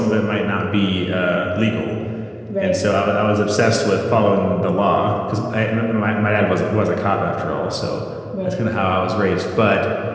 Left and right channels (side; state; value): both; identical; correlation 1.00